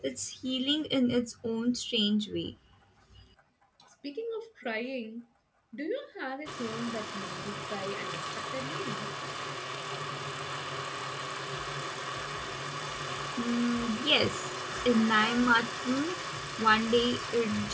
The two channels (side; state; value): both; identical; correlation 1.00